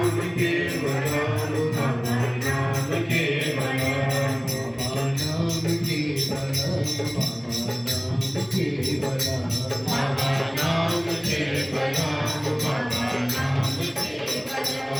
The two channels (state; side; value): identical; both; correlation 1.00